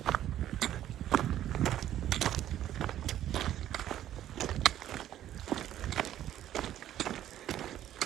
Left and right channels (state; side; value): quieter; left; 12.0 dB